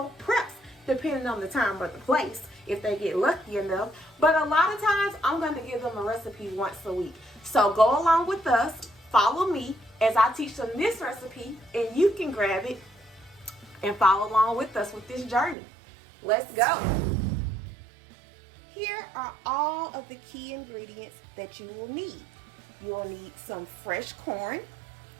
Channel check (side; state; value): left; drops out; at 15.6 s